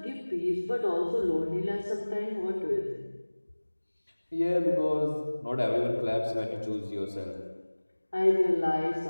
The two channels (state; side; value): inverted; both; correlation -1.00